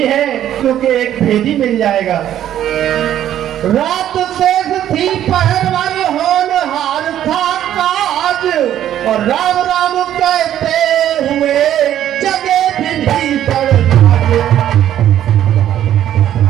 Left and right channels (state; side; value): quieter; left; 11.3 dB